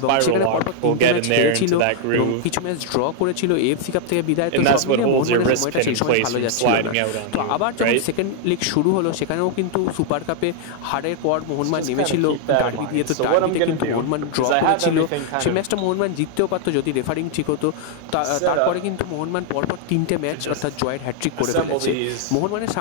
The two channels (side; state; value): both; different; correlation 0.00